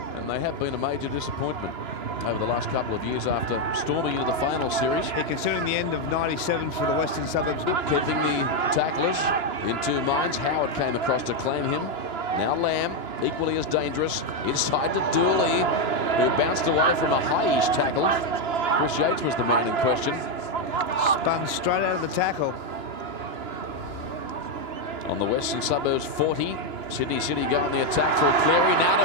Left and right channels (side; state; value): left; late; 2.9 ms